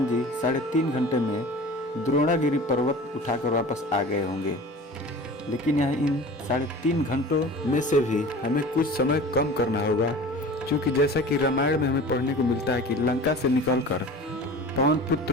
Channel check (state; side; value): normal; both; correlation 0.39